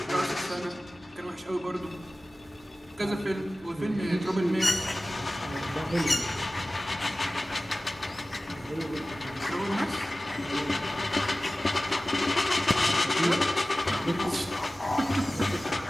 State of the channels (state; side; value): normal; both; correlation 0.97